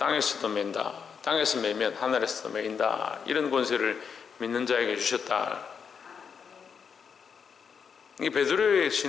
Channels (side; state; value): right; quieter; 6.5 dB